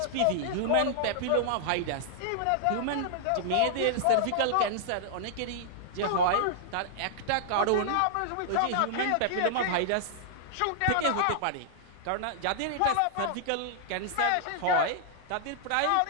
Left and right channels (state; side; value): different; both; correlation -0.01